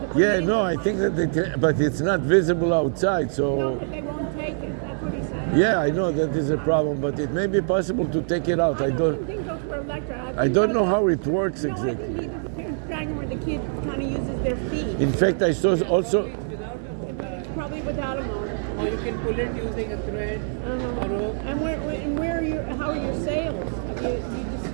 to put Yeah, it in no, the I car. think that they can, but it's not visible outside. No, So but they won't take it. That's what he said. yeah, I know that is a problem, but it may be possible to take it out. I don't. think those were electric. I don't know how it works No, I exactly. think either the parents drag them or the kid kind of uses their feet. In fact, I saw also. It's without a motor. Probably without a motor. Or you can pull it using a thread, a rope. And where are your, how are your sales? You just,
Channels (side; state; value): left; silent; 56 dB below the other